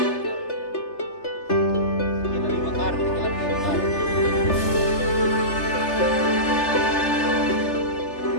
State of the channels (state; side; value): late; right; 3.3 ms